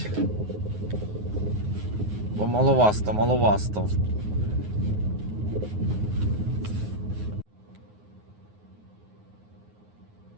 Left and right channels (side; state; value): left; late; 9.5 ms